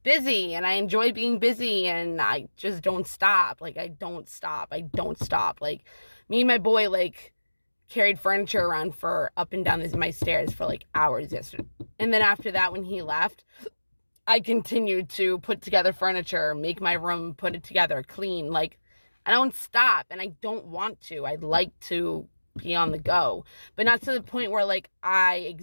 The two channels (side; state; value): both; inverted; correlation -1.00